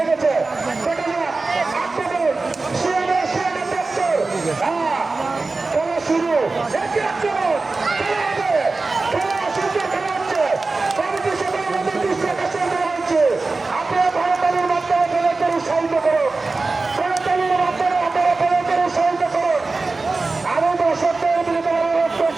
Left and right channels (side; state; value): left; quieter; 3.7 dB